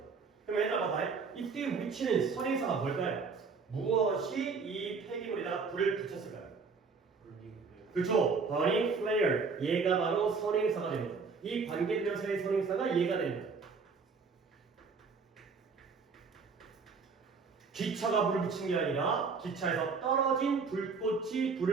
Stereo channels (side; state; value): left; quieter; 5.0 dB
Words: 그럼 얘들아 봐봐요. 이때 위치는 선행사가 뭘까요? 무엇이 이 폐기물에다가 불을 붙였을까요? 그렇죠. burning flare. 얘가 바로 선행사가 됩니다. 이 관계대명사의 선행사가 얘가 됩니다. 기차가 불을 붙인 게 아니라 기차에서 떨어진 불꽃이